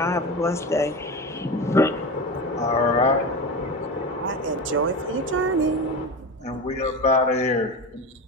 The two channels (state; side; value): normal; both; correlation 0.25